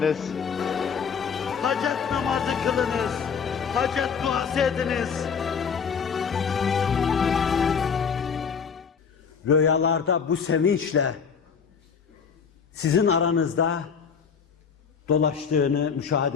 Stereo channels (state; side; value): quieter; right; 6.4 dB